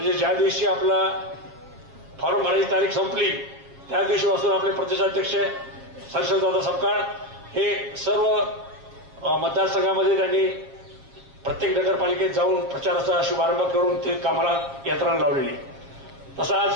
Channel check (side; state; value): left; late; 7.4 ms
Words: ज्या दिवशी आपला फॉर्म भरायची तारीख संपली त्या दिवशीपासून आपले प्रदेशाध्यक्ष हर्षवर्धनदादा सपकाळ हे सर्व मतदारसंघामध्ये त्यांनी प्रत्येक नगरपालिकेत जाऊन प्रचाराचा शुभारंभ करून ते कामाला यंत्रणा लावलेली. तसं आज